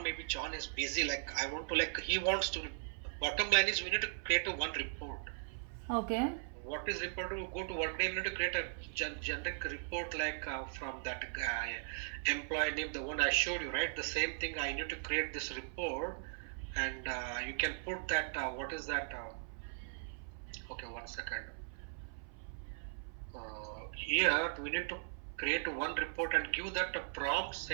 Maybe John is busy. Like I want to he wants to. Bottom line is we need to create one report. Okay. What is report? To go to workday, we need to create a generic report like from that employee name, the one I showed you, right? The same thing. I need to create this report, and you can put that. What is that? Okay, 1 second. Here we need to create one report and give that a prompt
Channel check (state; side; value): silent; left; 52 dB below the other